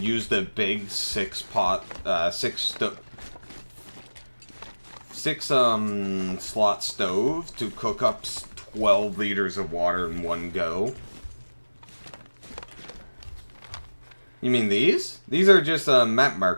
use the big six slot stove to cook up 12 liters of water in one go. You mean these? These are just map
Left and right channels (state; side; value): inverted; both; correlation -1.00